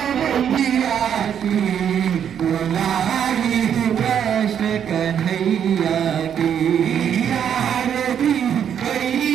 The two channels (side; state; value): left; quieter; 8.7 dB